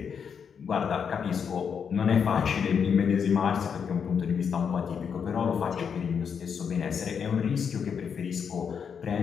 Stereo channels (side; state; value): right; quieter; 6.9 dB